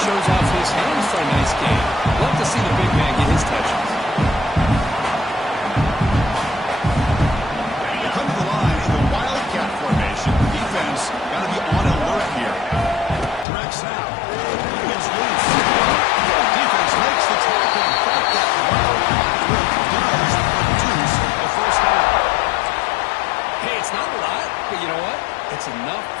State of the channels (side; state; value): right; drops out; at 13.5 s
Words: off his hands for a nice game. Love to see the big man get his touches. They come to the line in the wildcat formation. Defense got to be on alert here. Directs out. He gets loose. Defense makes the tackle, but that wildcat work does produce a first down. Hey, it's not a lot, but you know what? It's enough